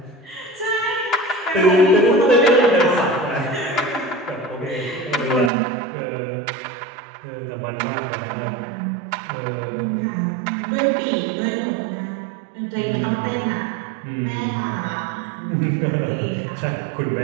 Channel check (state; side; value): drops out; left; at 5.5 s